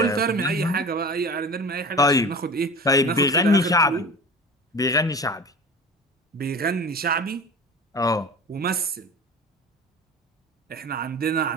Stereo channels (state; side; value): normal; both; correlation 0.36